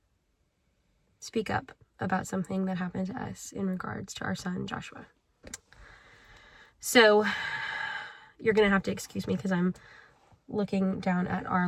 speak up about something that happened to us in regards to our son, Joshua. So you're going to have to excuse me because I'm looking down at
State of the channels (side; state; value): both; identical; correlation 1.00